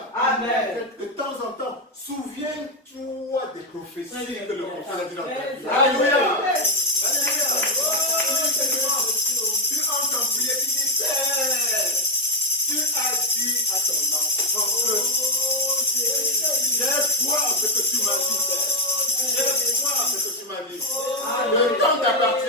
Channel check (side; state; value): both; normal; correlation 0.06